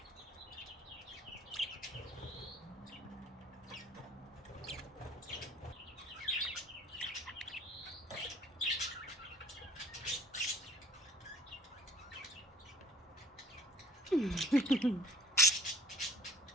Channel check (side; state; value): both; normal; correlation 0.53